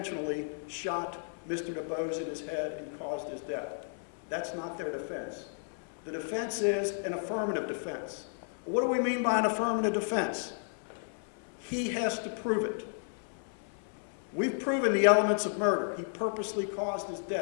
shot Mr. DuBose in his head and caused his death. That's not their defense. The defense is an affirmative defense. What do we mean by an affirmative defense? He has to prove it. We've proven the elements of murder. He purposely caused his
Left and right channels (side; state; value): right; silent; 56 dB below the other